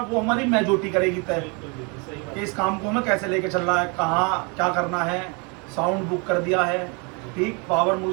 वो हमारी मेजोरिटी करेगी तय कि इस काम को हमें कैसे लेके चलना है, कहाँ क्या करना है। साउंड बुक कर दिया है, ठीक, पावर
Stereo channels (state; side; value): quieter; left; 32.2 dB